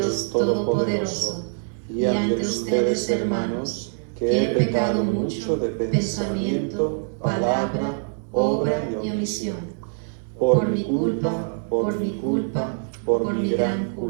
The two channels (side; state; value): left; silent; 63 dB below the other